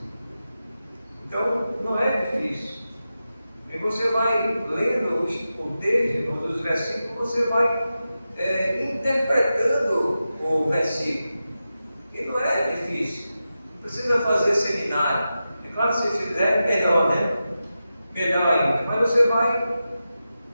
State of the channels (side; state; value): both; inverted; correlation -0.92